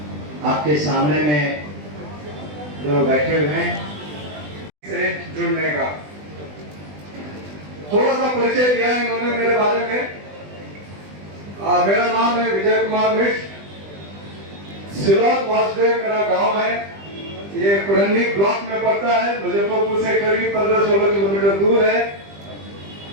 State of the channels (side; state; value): left; late; 20 ms